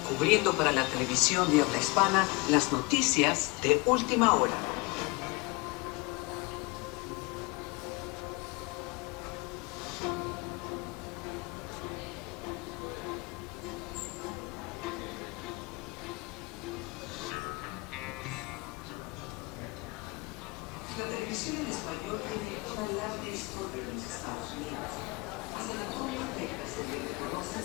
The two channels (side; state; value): right; quieter; 26.4 dB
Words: Cubriendo para la televisión de habla hispana las noticias de última hora. La televisión en español tiene una larga historia en los Estados Unidos. Hasta la actualidad se le reconoce